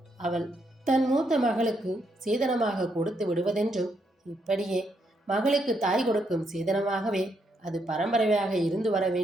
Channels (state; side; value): normal; both; correlation 0.77